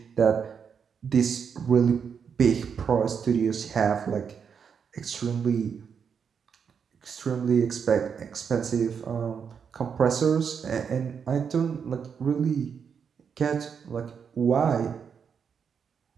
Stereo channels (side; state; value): left; quieter; 6.8 dB